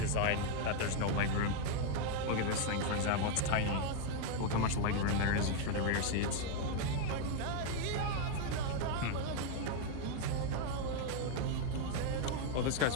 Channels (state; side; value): different; both; correlation 0.00